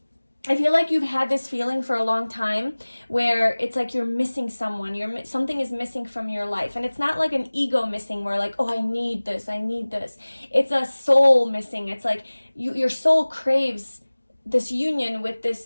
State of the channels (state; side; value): inverted; both; correlation -1.00